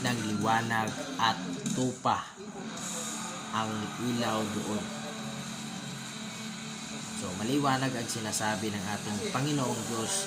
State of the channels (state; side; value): identical; both; correlation 1.00